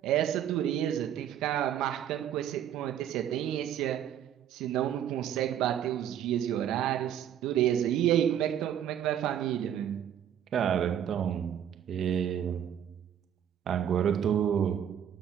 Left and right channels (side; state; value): left; quieter; 9.9 dB